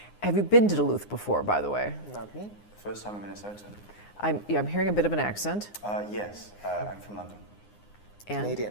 Have you been to Duluth before, by the way? Not me. First time in Minnesota. I'm hearing a bit of an accent. Yes, I'm from London. And?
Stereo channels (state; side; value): late; right; 9.7 ms